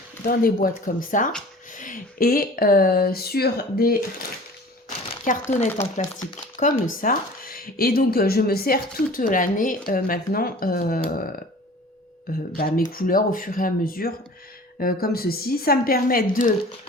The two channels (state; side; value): normal; both; correlation 0.44